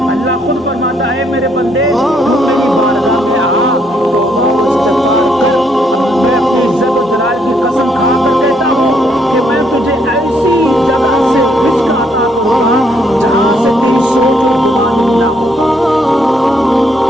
اللہ خود فرماتا ہے میرے بندے تو میری بارگاہ میں آ، توبہ و استغفار کر. میں اپنی عزت و جلال کی قسم کھا کر کہتا ہوں کہ میں تجھے ایسی جگہ سے رزق عطا کروں گا جہاں سے تیری سوچ اور گمان نہ ہو.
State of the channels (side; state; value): both; normal; correlation 0.71